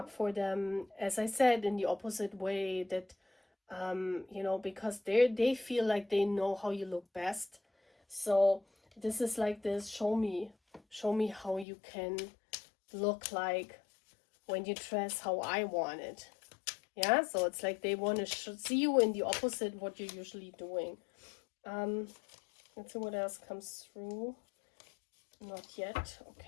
for them, as I said, in the opposite way, that you know, because they feel like they know how you look best. So this is like this, show me how you can look like when you dress how I want it. Yeah, so it's like they want to see you in the opposite what you're usually doing. Let's see what else comes through. Not yet.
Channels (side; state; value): right; drops out; at 11.7 s